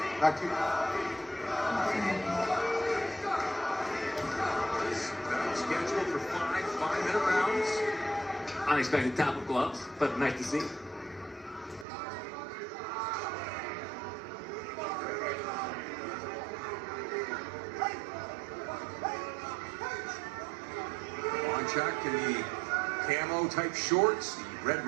Back to you. Scheduled for 5-minute rounds. Unexpected tap of gloves, but nice to see. Kovanchuk in the camo type shorts, the red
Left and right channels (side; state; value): left; drops out; at 11.9 s